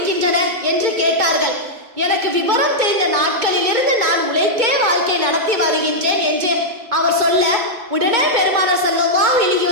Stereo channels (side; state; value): left; late; 2.2 ms